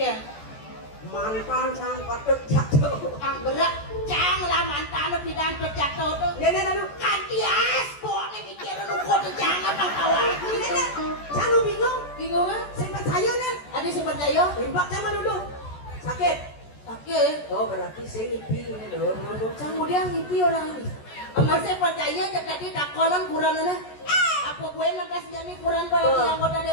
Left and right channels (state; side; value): late; right; 14 ms